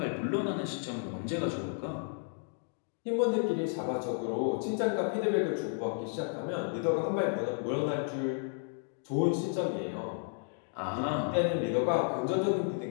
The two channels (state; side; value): silent; right; 56 dB below the other